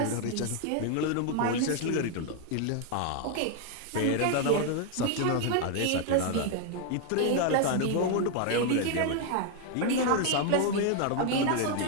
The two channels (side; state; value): both; different; correlation 0.00